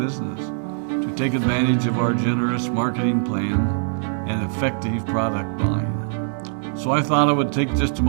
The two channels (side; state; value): left; silent; 64 dB below the other